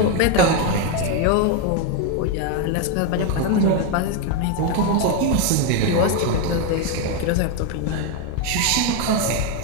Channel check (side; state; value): both; different; correlation 0.02